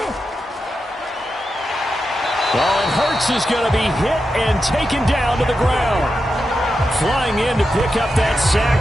Well, and Hurts is going to be hit and taken down to the ground. Flying in to pick up that sack,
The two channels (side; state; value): both; normal; correlation 0.88